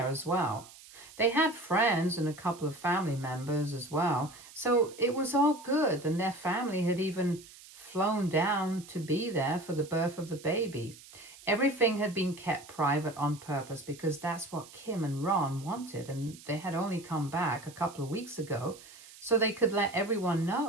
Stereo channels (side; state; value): right; noise; hiss, 20 dB below the sound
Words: as well. They had friends and a couple of family members as well, so it was all good, and their family had even flown down to be there for the birth of the baby. Everything had been kept private on purpose because that's what Kim and Ron wanted, and they had only come back a couple of weeks ago so they could let everyone